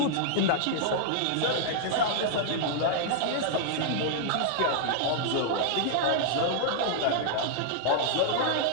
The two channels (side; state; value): both; different; correlation -0.01